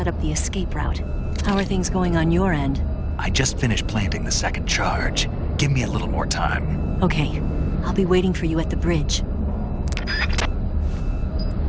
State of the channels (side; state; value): both; identical; correlation 1.00